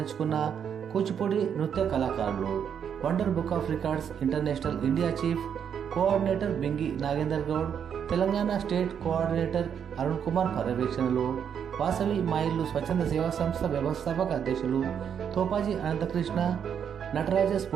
కూచిపూడి నృత్య కళాకారులు. Wonder book of records international India chief coordinator Bingi Nagender Goud, Telangana state coordinator Arun Kumar పర్యవేక్షణలో వాసవి మా ఇల్లు స్వచ్ఛంద సేవా సంస్థ వ్యవస్థాపక అధ్యక్షులు తోపాజీ అనంతకృష్ణ, నటరాజ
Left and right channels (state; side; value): quieter; left; 8.0 dB